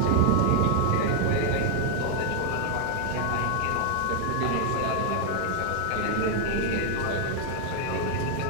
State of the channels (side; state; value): both; different; correlation 0.00